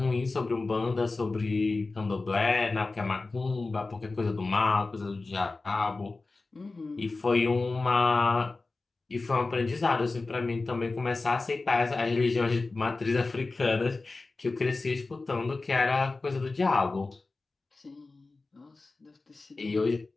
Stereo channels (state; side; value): quieter; right; 3.6 dB